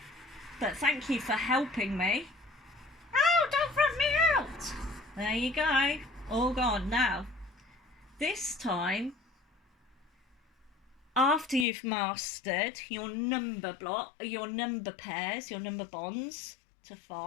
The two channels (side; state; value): right; drops out; at 11.7 s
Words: but thank you for helping me. Oh, don't rub me out. There you go, all gone. Now, this time, after you've mastered your number block, your number pairs, your number bonds to